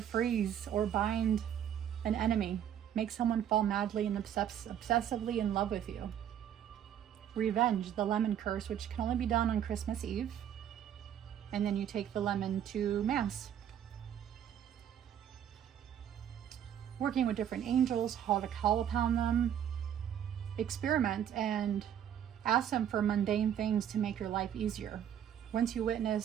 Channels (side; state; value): left; quieter; 9.8 dB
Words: freeze or bind an enemy. Make someone fall madly and obsessively in love with you. Revenge, the lemon curse, which can only be done on Christmas Eve. And then you take the lemon to Mass. Working with different angels, how to call upon them. Experiment and ask them for mundane things to make your life easier. Once you